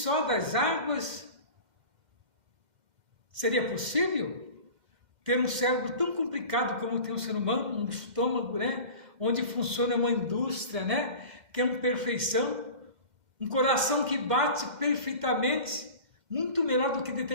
das águas. Seria possível ter um cérebro tão complicado como tem um ser humano, um estômago, né? Onde funciona uma indústria, né? Que é uma perfeição, um coração que bate perfeitamente, muito melhor do que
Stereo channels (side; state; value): left; late; 2.1 ms